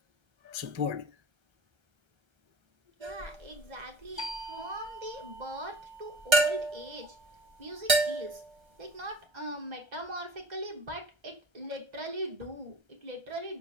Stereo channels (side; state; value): left; late; 1.3 ms